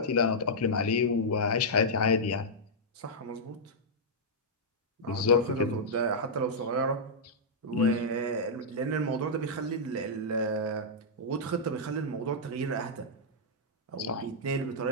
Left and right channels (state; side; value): normal; both; correlation -0.09